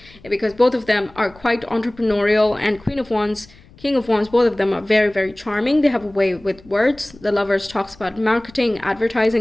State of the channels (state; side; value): noise; left; rumble, 25 dB below the sound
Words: because both of them are quite entrepreneurial. And Queen of Wands, King of Wands, both of them are very, very charming. They have a way with words. The Lovers talks about marketing,